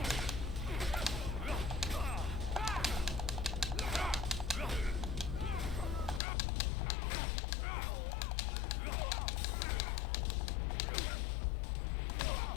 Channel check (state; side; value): drops out; right; at 6.2 s